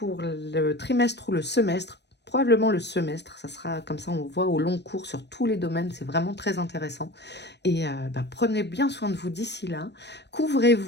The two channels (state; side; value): late; right; 0.50 ms